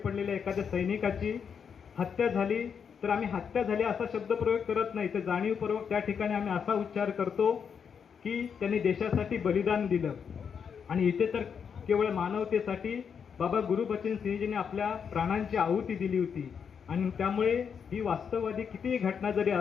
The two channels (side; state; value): right; quieter; 6.9 dB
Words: एखाद्या सैनिकाची हत्या झाली तर आम्ही हत्या झाली असा शब्दप्रयोग करत नाही, तर जाणीवपूर्वक त्या ठिकाणी आम्ही असा उच्चार करतो की त्यांनी देशासाठी बलिदान दिलं. आणि इथे तर केवळ मानवतेसाठी बाबा गुरुबचन सिंहजींनी आपल्या प्राणांची आहुती दिली होती. आणि त्यामुळे ही वास्तववादी कितीही घटना जरी